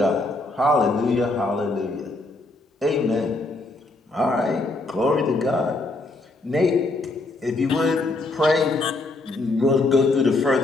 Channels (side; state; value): right; quieter; 3.0 dB